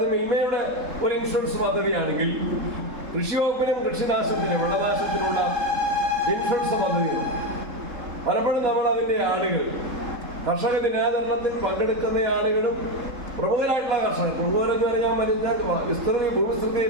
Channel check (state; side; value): late; left; 3.7 ms